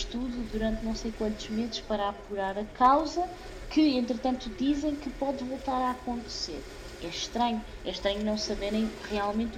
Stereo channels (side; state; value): both; identical; correlation 1.00